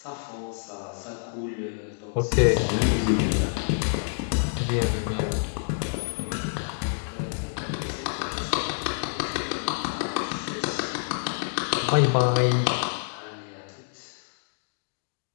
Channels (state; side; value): silent; right; digital silence